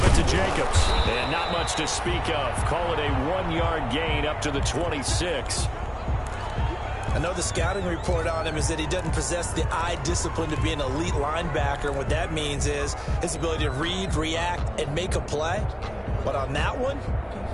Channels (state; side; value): identical; both; correlation 1.00